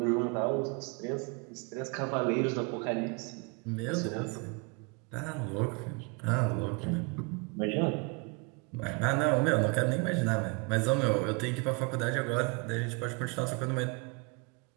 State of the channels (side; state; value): left; quieter; 30.8 dB